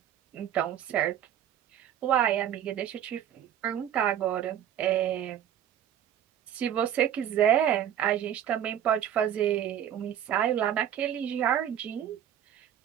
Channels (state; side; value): quieter; left; 10.2 dB